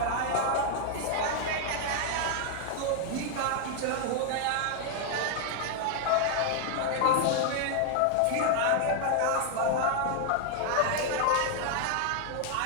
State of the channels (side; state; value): both; different; correlation 0.00